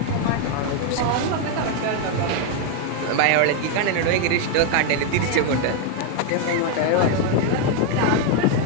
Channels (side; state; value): both; different; correlation 0.01